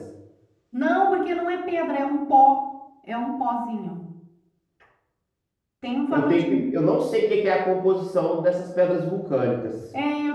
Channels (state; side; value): identical; both; correlation 1.00